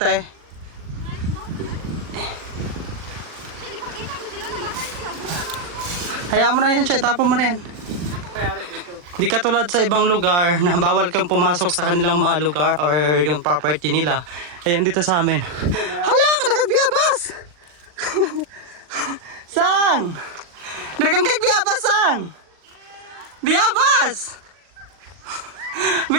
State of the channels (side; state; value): left; late; 40 ms